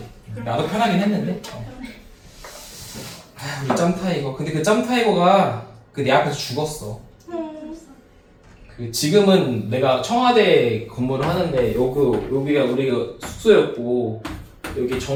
나도 편하긴 했는데. 우리 짬타이거. 근데 그 짬타이거가 내 앞에서 죽었어. 지금은 내가 청와대 근무를 하는데 여기가 우리가 숙소였고 여기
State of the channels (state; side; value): identical; both; correlation 1.00